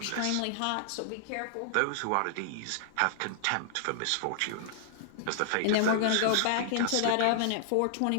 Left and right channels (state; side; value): different; both; correlation -0.01